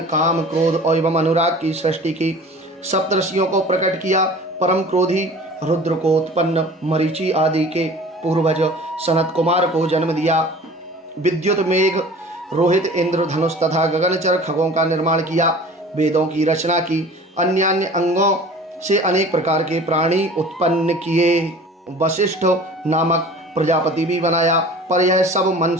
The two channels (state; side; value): normal; both; correlation 0.43